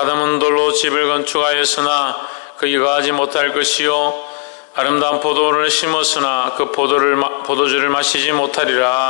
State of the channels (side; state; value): right; quieter; 37.5 dB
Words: 돌로 집을 건축하였으나 거기 거하지 못할 것이요 아름다운 포도를 심었으나 그 포도주를 마시지